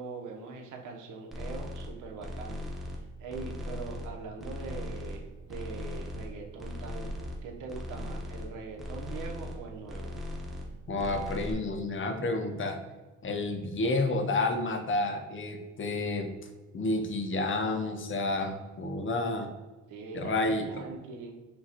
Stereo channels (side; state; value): both; normal; correlation 0.24